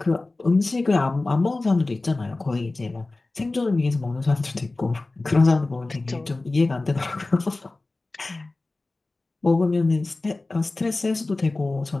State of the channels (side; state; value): right; quieter; 3.2 dB